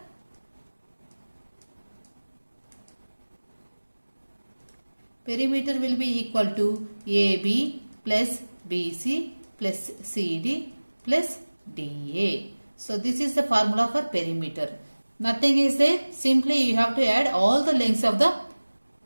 perimeter will be equal to AB plus BC plus CD plus DA. So this is the formula for perimeter. Nothing is there. Simply you have to add all the lengths of the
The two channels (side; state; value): both; inverted; correlation -1.00